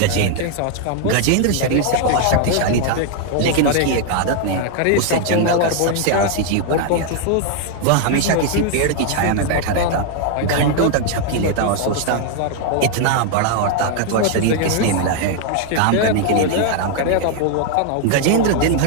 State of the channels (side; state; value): both; different; correlation 0.00